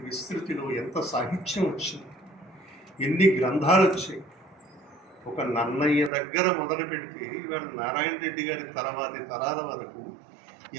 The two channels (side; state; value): left; drops out; at 6.1 s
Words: విస్తృతిలో ఎంత సాహిత్యం వచ్చింది, ఎన్ని గ్రంథాలు వచ్చాయి. ఒక నన్నయ్య దగ్గర మొదలు పెడితే ఇవాళ నారాయణ రెడ్డి గారి తర్వాతి తరాల వరకు